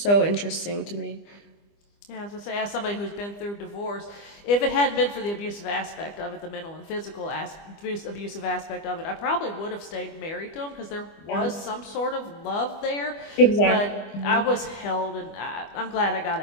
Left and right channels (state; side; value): late; right; 25 ms